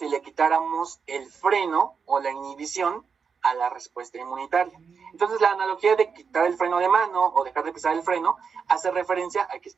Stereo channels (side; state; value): left; quieter; 6.0 dB